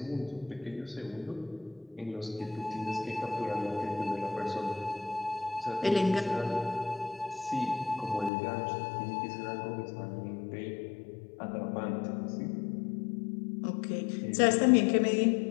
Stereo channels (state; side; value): drops out; right; at 8.3 s